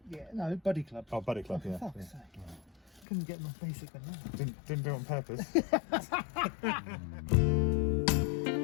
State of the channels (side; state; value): right; drops out; at 3.1 s